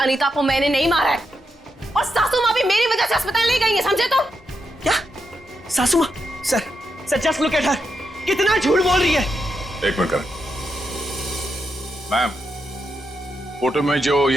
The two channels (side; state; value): both; normal; correlation 0.84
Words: को मैंने नहीं मारा है, और सासू माँ भी मेरी वजह से अस्पताल ले गई है, समझे तुम? क्या? सासू माँ? Sir just look at her, कितना झूठ बोल रही है। एक मिनट करण। मैम, फोटो में जो